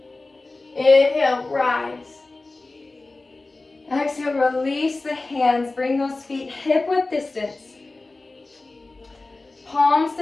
Inhale, rise. Exhale, release the hands. Bring those feet hip width distance. Palms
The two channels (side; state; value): right; quieter; 3.3 dB